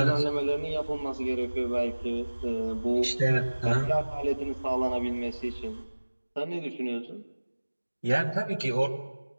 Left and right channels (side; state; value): both; inverted; correlation -1.00